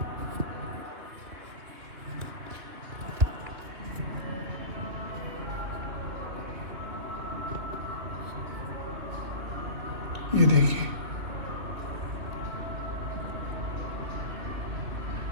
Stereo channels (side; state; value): left; late; 3.2 ms